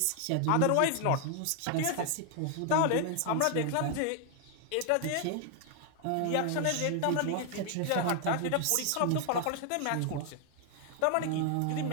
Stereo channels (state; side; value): different; both; correlation 0.00